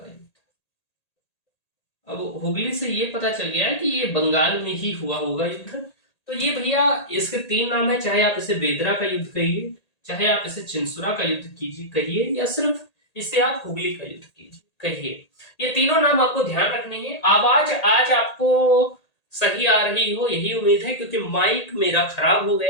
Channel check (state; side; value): late; right; 1.8 ms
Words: युद्ध। अब हुगली से ये पता चल गया है कि ये बंगाल में ही हुआ होगा युद्ध। तो ये भैया इसके तीन नाम है, चाहे आप इसे बेदरा का युद्ध कहिए, चाहे आप इसे चिनसुरा का युद्ध कीजिए कहिए, या सिर्फ इसे आप हुगली का युद्ध कीजिए कहिए। ये तीनों नाम आपको ध्यान रखने हैं। आवाज आज आपको सही आ रही हो यही उम्मीद है, क्योंकि माइक मेरा खराब हो